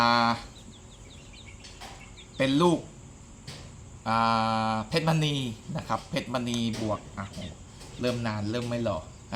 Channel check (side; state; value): both; identical; correlation 1.00